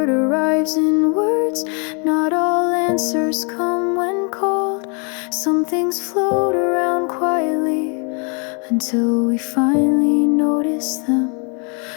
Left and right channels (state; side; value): quieter; right; 36.9 dB